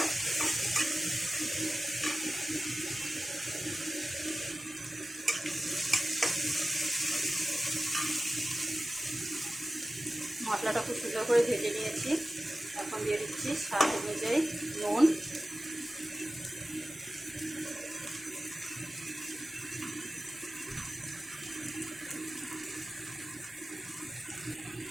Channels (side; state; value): both; normal; correlation 0.95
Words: মশলাটা খুব সুন্দর করে ভেজে নিয়েছি। এখন দিয়ে দিচ্ছি স্বাদ অনুযায়ী নুন,